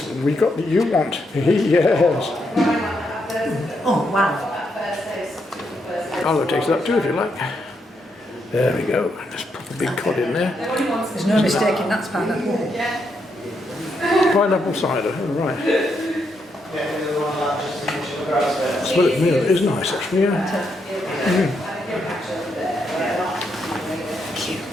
we got what you want. Yes. Oh, wow. I'll taste that too if you like. There we go. Just pop a big cod in there. There's no mistaking that's pineapple. Pineapple cider, oh, right. Smell it from here, it is nice actually, yeah.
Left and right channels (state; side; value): normal; both; correlation 0.79